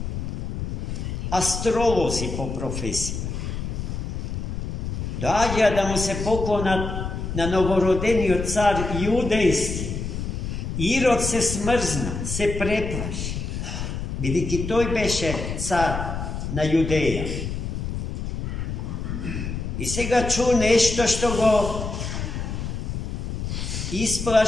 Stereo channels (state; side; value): noise; left; rumble, 4 dB below the sound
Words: astrolozi po profesiji. Dođa da mu se poklona na novorodenio car judejski. Irod se smrzna, se preplaši. Vidiki, toj beše car na Judeja. I сега ču nešto što go